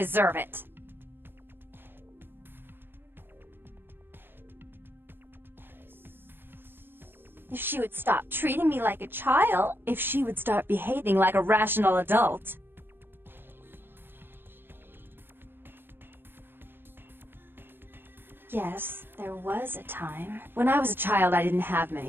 it. If she would stop treating me like a child, if she would start behaving like a rational adult. Yes, there was a time. When I was a child, I didn't have many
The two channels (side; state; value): left; late; 0.10 ms